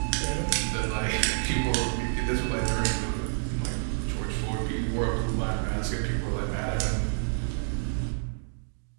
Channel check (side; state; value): left; silent; digital silence